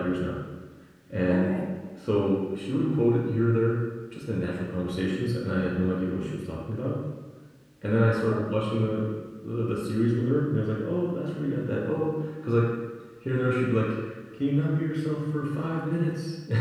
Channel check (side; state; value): both; identical; correlation 1.00